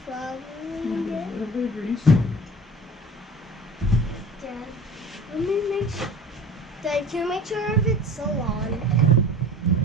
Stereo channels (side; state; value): both; normal; correlation 0.41